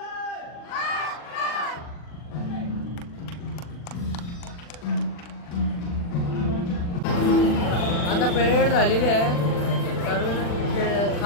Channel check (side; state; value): right; late; 40 ms